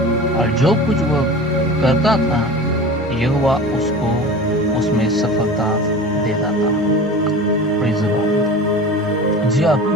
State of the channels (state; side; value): normal; both; correlation 0.35